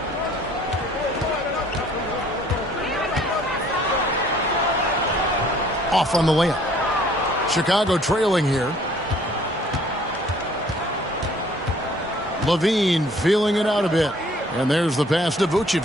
Off on the layup. Chicago trailing here. Levine feeling it out a bit. And there's the pass to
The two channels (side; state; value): both; normal; correlation 0.57